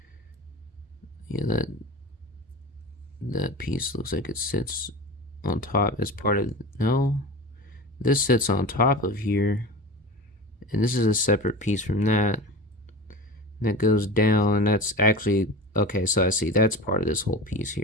Yeah, that piece looks like it sits on top as part of... No, this sits on top of here, and this is a separate piece from that. And that goes down, and that's actually... Okay, so I see that's part of this whole piece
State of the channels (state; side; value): normal; both; correlation 0.31